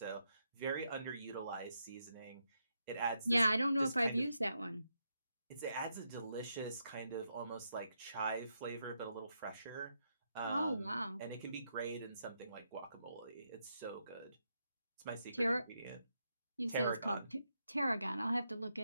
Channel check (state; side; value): inverted; both; correlation -0.82